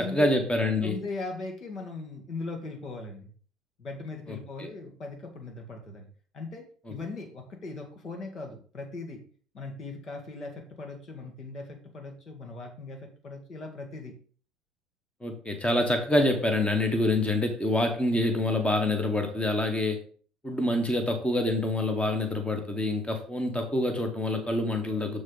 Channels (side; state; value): both; normal; correlation 0.66